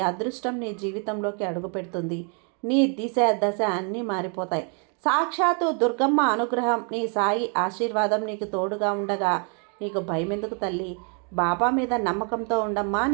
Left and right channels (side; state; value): left; quieter; 38.9 dB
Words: అదృష్టం నీ జీవితంలోకి అడుగు పెడుతుంది. నీ దిశ దశ అన్నీ మారిపోతాయి. సాక్షాత్తు దుర్గమ్మ అనుగ్రహం, నీ సాయి ఆశీర్వాదం నీకు తోడుగా ఉండగా నీకు భయం ఎందుకు తల్లి? బాబా మీద నమ్మకంతో ఉండమ్మా,